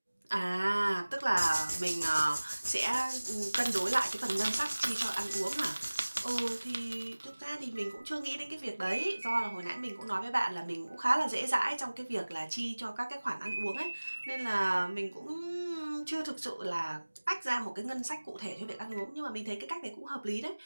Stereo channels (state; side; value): inverted; both; correlation -1.00